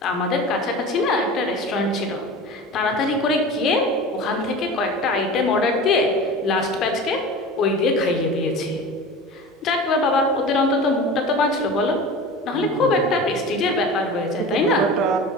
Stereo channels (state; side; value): normal; both; correlation 0.34